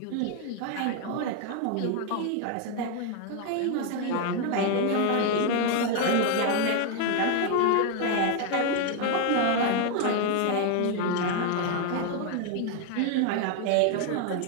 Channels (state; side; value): different; both; correlation 0.01